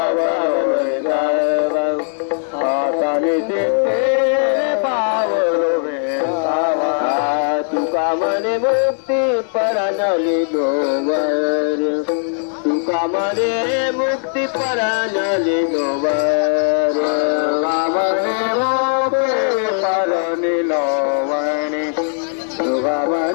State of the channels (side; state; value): right; silent; digital silence